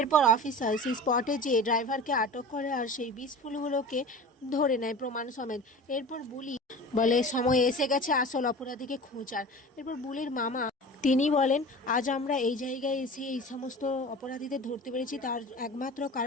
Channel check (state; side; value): normal; both; correlation 0.36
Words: অফিসার সেই স্পটে যেয়ে ড্রাইভারকে আটক করে আর সেই বিষফুলগুলোকে ধরে নেয় প্রমাণ সমেত। এরপর বুলি বলে সময় এসে গেছে আসল অপরাধীকে খোঁজার। এরপর বুলির মামা তিনি বলেন, আজ আমরা এই জায়গায় এসে এই সমস্ত অপরাধীদের ধরতে পেরেছি তার একমাত্র